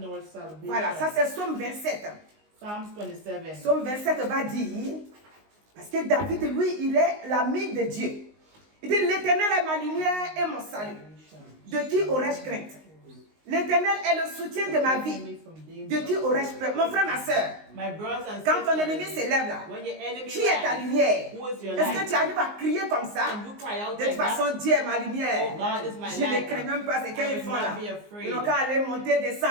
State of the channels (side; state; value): left; late; 19 ms